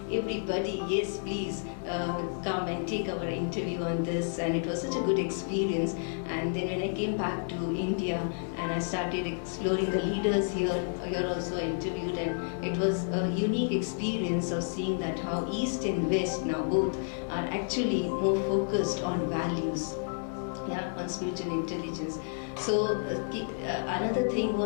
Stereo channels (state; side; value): silent; right; digital silence